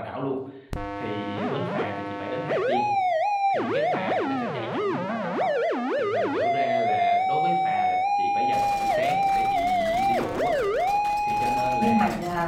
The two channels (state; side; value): identical; both; correlation 1.00